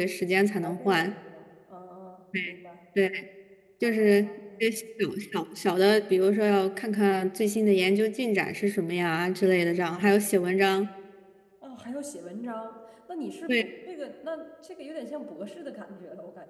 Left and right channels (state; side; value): identical; both; correlation 1.00